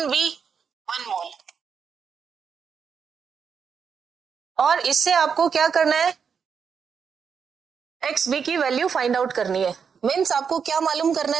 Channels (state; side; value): quieter; left; 6.5 dB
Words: 1 मोल। और इससे आपको क्या करना है, XB की वैल्यू फाइंड आउट करनी है। मीन्स आपको क्या मालूम करना